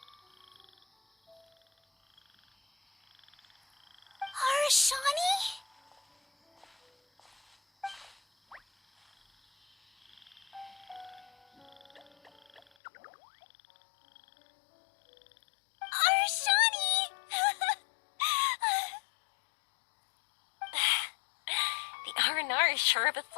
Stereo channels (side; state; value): right; drops out; at 12.6 s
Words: Arashani? Arashani! The R&R is sure of a